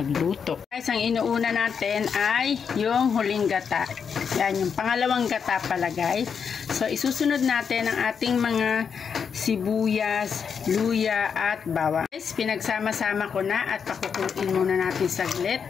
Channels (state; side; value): quieter; right; 6.6 dB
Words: Guys, ang inuuna natin ay yung huling gata. Yan, yung pangalawang gata pala guys. So isusunod natin ang ating mga sibuyas, luya at bawang. Guys, pinagsama-sama ko na at pakukuluin muna natin saglit.